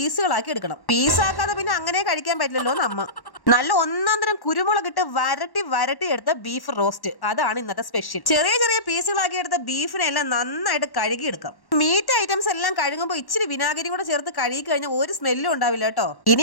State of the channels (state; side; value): late; right; 1.1 ms